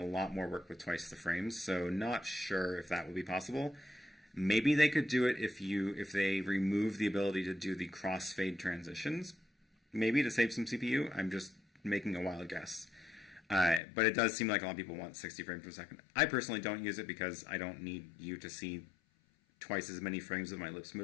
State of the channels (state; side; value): drops out; right; at 13.8 s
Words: lot more work with twice the frames. So not sure if that will be possible. Maybe they could do it if they remove the ability to do the crossfade transitions. Maybe to save some CPU. I'm just making a wild guess. But it does seem like a lot of people want 60 frames per second. I personally don't use it because I don't need you to see twice as many frames of my lips